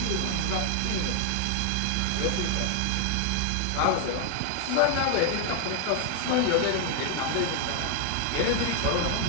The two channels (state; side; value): different; both; correlation 0.00